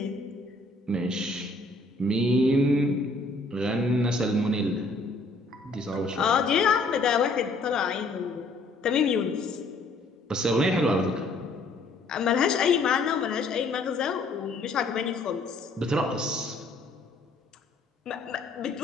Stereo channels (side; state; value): right; quieter; 3.0 dB